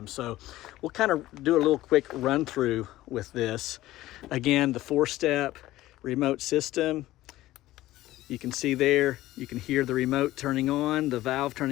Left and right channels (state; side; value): quieter; right; 16.1 dB